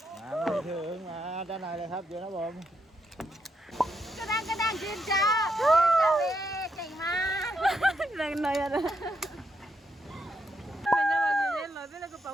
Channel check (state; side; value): normal; both; correlation 0.79